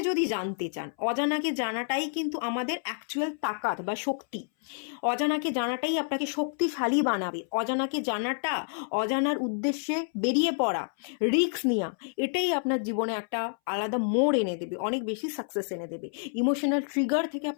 যদি জানতে চান, অজানাকে জানাটাই কিন্তু আমাদের অ্যাকচুয়াল তাকাত বা শক্তি। অজানাকে জানাটাই আপনাকে শক্তিশালী বানাবে। অজানাকে জানাটা, অজানার উদ্দেশ্যে বেরিয়ে পড়া, রিস্ক নেওয়া, এটাই আপনার জীবনে একটা আলাদা মোড় এনে দেবে, অনেক বেশি সাকসেস এনে দেবে। ইমোশনাল ট্রিগার থেকে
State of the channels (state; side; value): silent; right; 59 dB below the other